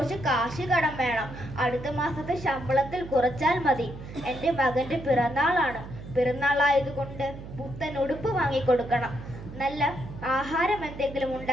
കാശ് കടം വേണം. അടുത്ത മാസത്തെ ശമ്പളത്തിൽ കുറച്ചാൽ മതി. എൻ്റെ മകൻ്റെ പിറന്നാളാണ്. പിറന്നാളായതുകൊണ്ട് പുത്തൻ ഉടുപ്പ് വാങ്ങിക്കൊടുക്കണം. നല്ല ആഹാരം എന്തെങ്കിലും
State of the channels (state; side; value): noise; right; hum, 12 dB below the sound